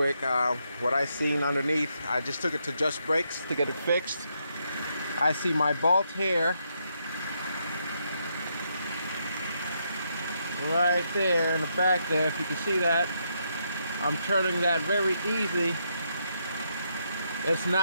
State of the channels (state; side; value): inverted; both; correlation -0.78